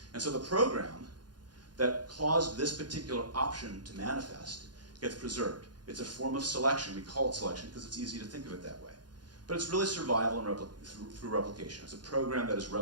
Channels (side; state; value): left; late; 0.70 ms